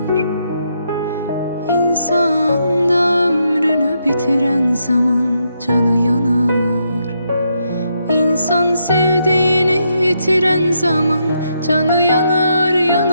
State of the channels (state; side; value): inverted; both; correlation -0.79